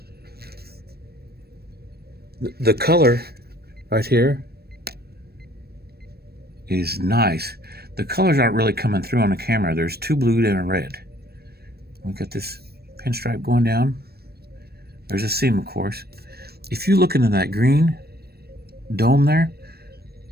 The color right here is nice. The colors aren't really coming through on the camera. There's 2 blue and a red. We got this pinstripe going down. There's a seam, of course. if you look into that green dome there,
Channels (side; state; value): left; late; 0.46 ms